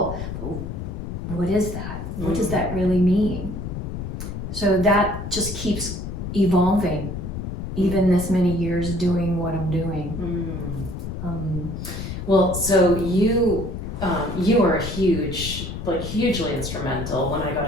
but what is that? What does that really mean? So that just keeps evolving, even this many years doing what I'm doing. Well, so you were hugely instrumental when I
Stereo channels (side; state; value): left; noise; rumble, 6 dB below the sound